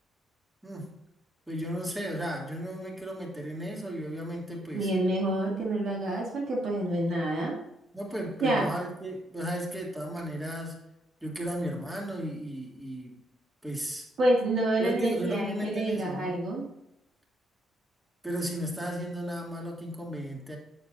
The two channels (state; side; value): normal; both; correlation 0.74